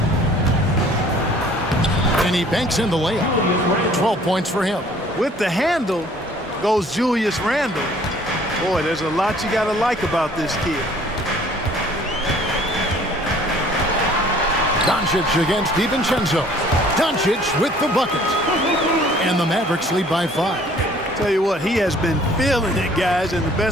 And he banks in the layup. 12 points for him. With the handle goes Julius Randle. Boy, there's a lot you got to like about this kid. Doncic against DiVincenzo. Doncic with the bucket. And the Mavericks lead by 5. Tell you what, he has been feeling it, guys, and the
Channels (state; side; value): normal; both; correlation 0.55